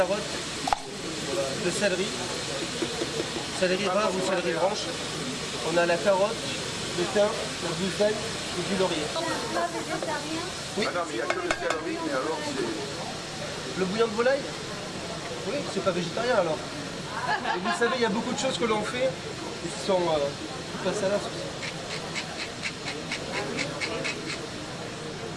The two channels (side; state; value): both; identical; correlation 1.00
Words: le céleri rare ou céleri branche. On a la carotte, le thym, le buffet et du laurier. Oui. Ah non, mais il n'y a que le céleri, mais alors c'est... Le bouillon de volaille? Oui, c'est pas végétarien alors. Et vous savez, il y a beaucoup de choses que l'on fait qui sont pas salaces aussi.